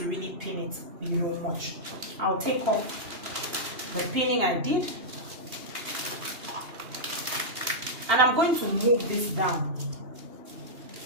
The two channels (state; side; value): late; left; 2.8 ms